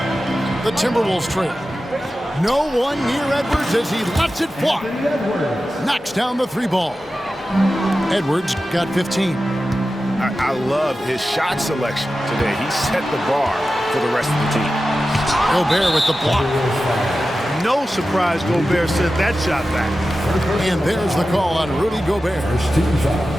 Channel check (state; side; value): normal; both; correlation 0.93